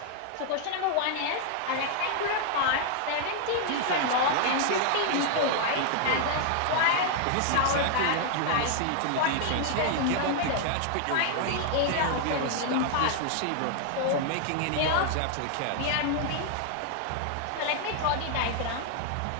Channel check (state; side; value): different; both; correlation 0.00